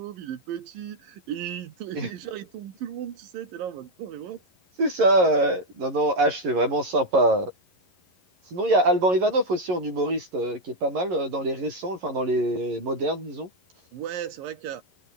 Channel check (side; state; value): left; late; 11 ms